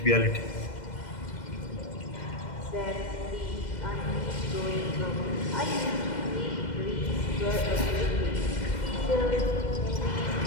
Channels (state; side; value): late; right; 2.1 ms